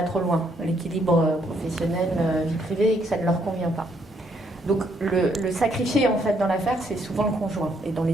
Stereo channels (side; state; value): both; normal; correlation 0.71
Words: trop loin, l'équilibre professionnel, vie privée, et que ça ne leur convient pas. Donc le sacrifié en fait dans l'affaire, c'est souvent le conjoint, et dans les